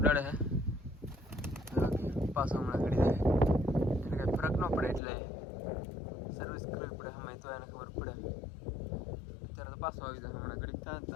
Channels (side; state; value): right; drops out; at 5.0 s